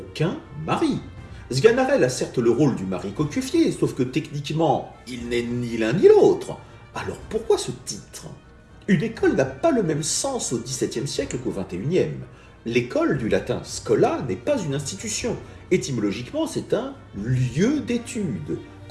mari. Sganarelle a certes le rôle du mari cocufié, sauf que techniquement, il n'est ni l'un ni l'autre. Alors pourquoi ce titre ? Une école n'a pas le même sens au XVIIe siècle qu'au XXIe. L'école, du latin scola, n'est pas une institution. Étymologiquement, c'est un lieu d'étude.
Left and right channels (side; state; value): both; identical; correlation 1.00